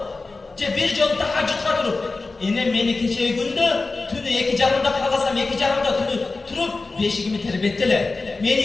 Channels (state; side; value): quieter; right; 3.7 dB